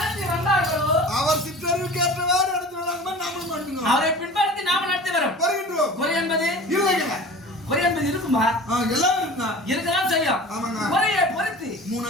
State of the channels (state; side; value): normal; both; correlation 0.39